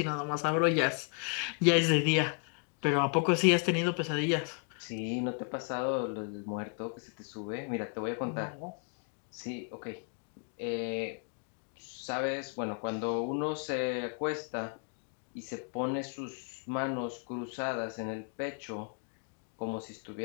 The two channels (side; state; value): right; quieter; 38.5 dB